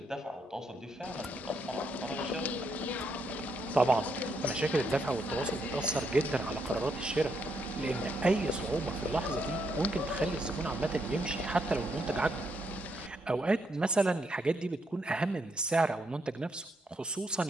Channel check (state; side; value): normal; both; correlation 0.77